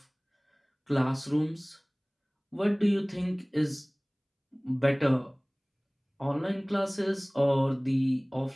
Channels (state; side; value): identical; both; correlation 1.00